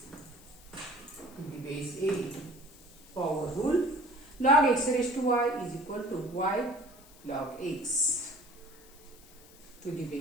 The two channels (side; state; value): left; noise; hiss, 23 dB below the sound